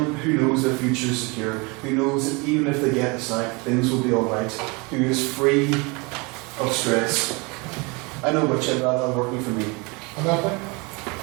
who knows their future is secure, who knows that even if they get the sack, things will be alright, who is free of stress. I know which I'd rather have working for me.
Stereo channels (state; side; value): quieter; left; 28.3 dB